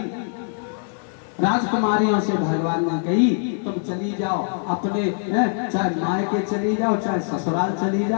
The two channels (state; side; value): silent; right; 60 dB below the other